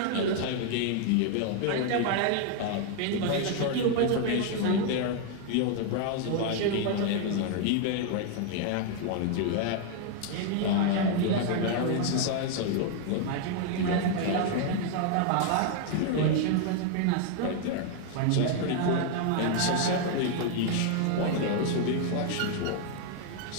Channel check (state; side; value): different; both; correlation 0.00